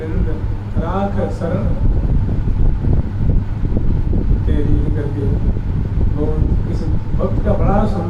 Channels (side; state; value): both; identical; correlation 1.00